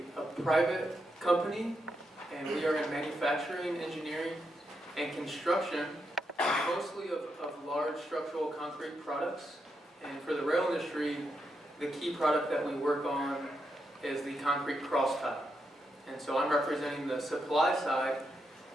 private company, and we are in manufacturing, engineering, and construction, mostly of large structural concrete products. And for the rail industry, the key product that we work on is the concrete cross tie. And so I'm representing the supply side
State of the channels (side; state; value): both; normal; correlation 0.83